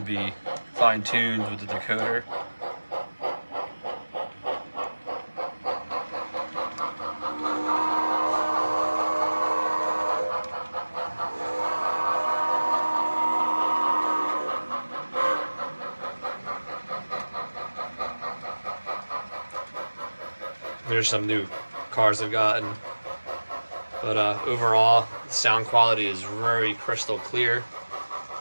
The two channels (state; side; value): inverted; both; correlation -1.00